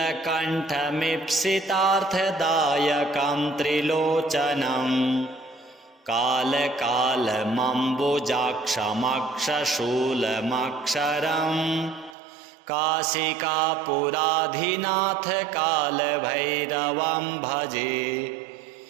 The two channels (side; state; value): left; drops out; at 12.2 s